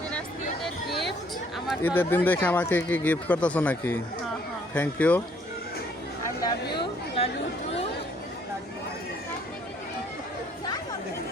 ঈদের দিন দেখে আমাকে কি গিফট করতেছো নাকি? Thank you.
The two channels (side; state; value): both; normal; correlation 0.64